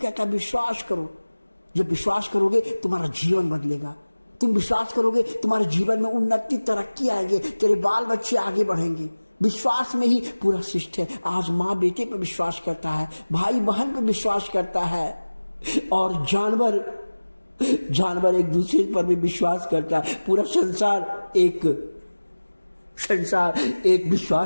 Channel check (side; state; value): both; inverted; correlation -1.00